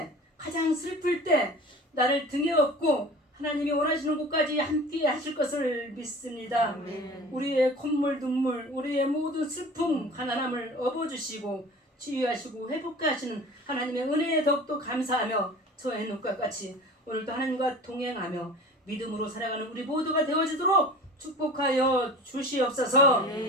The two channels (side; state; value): both; normal; correlation 0.39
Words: 가장 슬플 때 나를 등에 업고 하나님이 원하시는 곳까지 함께 하실 것을 믿습니다. 아멘. 우리의 콧물 눈물, 우리의 모든 슬픔 가난함을 업어주시고 치유하시고 회복케 하시는 하나님의 은혜에 더욱더 감사하며 저 에녹과 같이 오늘도 하나님과 동행하며 믿음으로 살아가는 우리 모두가 되어지도록 축복하여 주시옵소서.